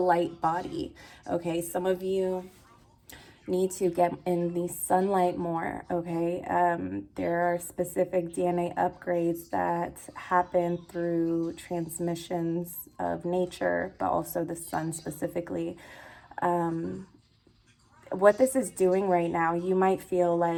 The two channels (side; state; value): both; identical; correlation 1.00